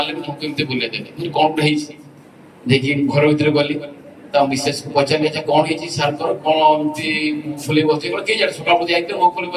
ମୁଁ କେମିତି ବୁଲେଇ ଦେଲି। କଣ ଗୋଟେ ହେଇଛି ଦେଖି ଘର ଭିତରେ ଗଲି, ତା ମିସେସକୁ ପଚାରିଲି ଯେ କଣ ହେଇଛି ସାର୍ଙ୍କର, କଣ ଏମିତି ଫୁଲେଇ ବସିଛି। କେହି ଜାଣେ ସକାଳୁ ଯାଇଥିଲେ ମୋ ଫୁଲେଇ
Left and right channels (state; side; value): identical; both; correlation 1.00